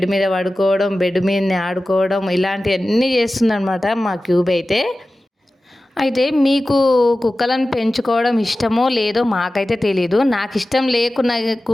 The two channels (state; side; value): normal; both; correlation 0.95